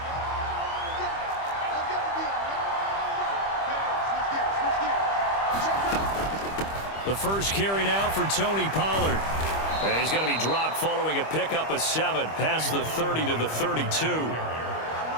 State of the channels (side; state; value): right; late; 25 ms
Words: The first carry now for Tony Pollard. He's going to be dropped following a pickup of 7 past the 30 to the 32.